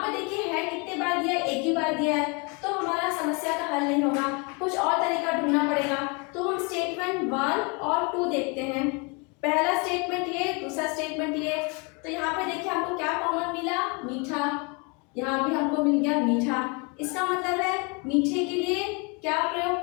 पर देखिए है कितने बार दिया है, एक ही बार दिया है, तो हमारा समस्या का हल नहीं होगा, कुछ और तरीका ढूंढना पड़ेगा। तो हम स्टेटमेंट 1 और 2 देखते हैं, पहला स्टेटमेंट ये, दूसरा स्टेटमेंट ये। तो यहाँ पे देखिए हमको क्या कॉमन मिला, मीठा, यहाँ भी हमको मिल गया मीठा, इसका मतलब है मीठे के लिए क्या प्रयोग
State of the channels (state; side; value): quieter; right; 31.8 dB